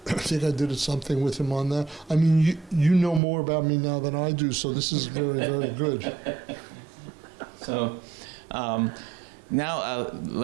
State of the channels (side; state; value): left; drops out; at 3.2 s